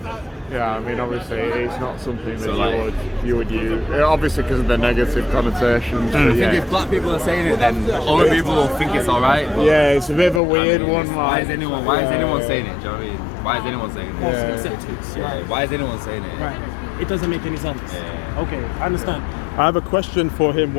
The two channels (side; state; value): right; drops out; at 10.4 s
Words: Yeah, I mean, obviously, it's not something that So, like- you would use. Obviously, because of the negative connotations. But I think yeah. if black people are saying it, then other people will think it's alright. Yeah, it's a bit of a weird one. Why Like, is anyone saying it? Do you know what I mean? Why is anyone saying it? Yeah. Why is anyone saying it? Right. It doesn't make any sense. Yeah. Okay, I understand. I have a question for him.